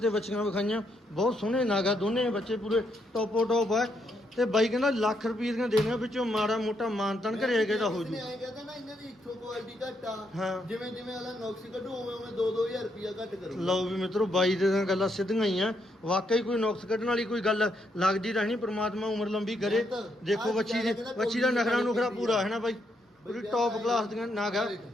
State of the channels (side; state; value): both; normal; correlation 0.77